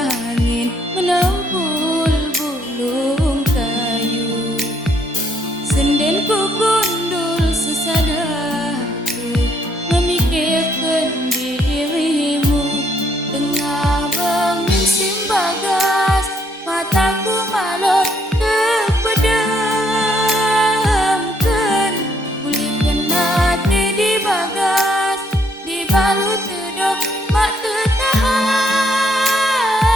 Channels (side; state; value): both; normal; correlation 0.70